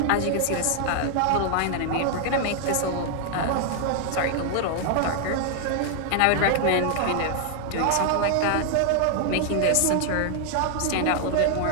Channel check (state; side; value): different; both; correlation 0.00